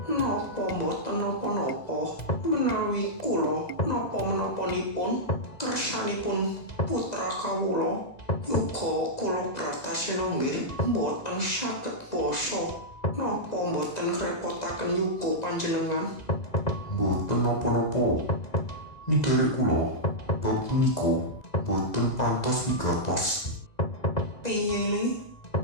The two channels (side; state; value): right; late; 2.0 ms